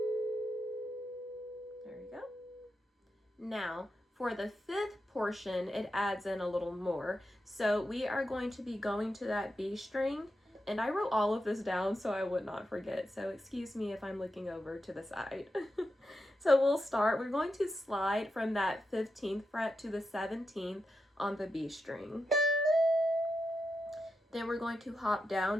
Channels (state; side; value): normal; both; correlation 0.87